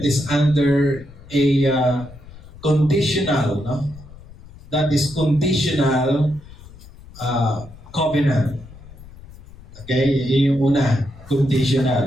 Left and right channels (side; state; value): left; noise; rumble, 19 dB below the sound